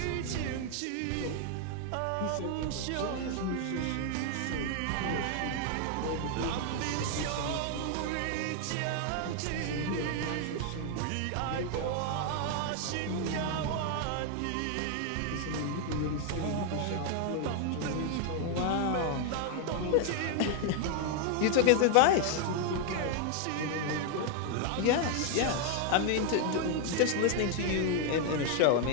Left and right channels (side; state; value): both; different; correlation 0.00